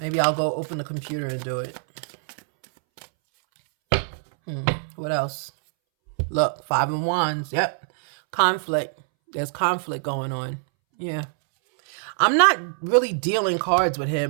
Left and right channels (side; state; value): left; silent; 63 dB below the other